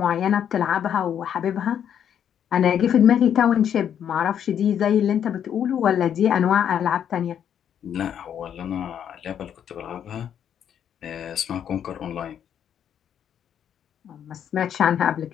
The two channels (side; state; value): right; quieter; 9.1 dB